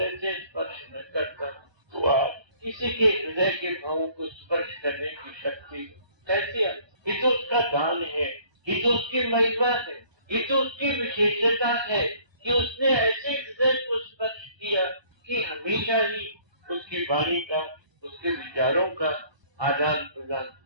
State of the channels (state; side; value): late; left; 1.2 ms